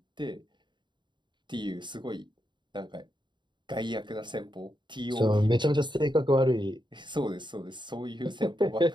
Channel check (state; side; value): late; left; 0.22 ms